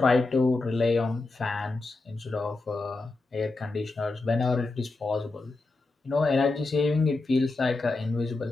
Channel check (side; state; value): right; quieter; 3.4 dB